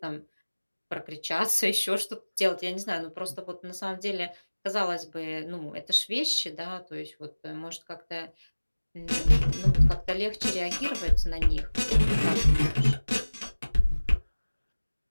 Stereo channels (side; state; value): both; inverted; correlation -1.00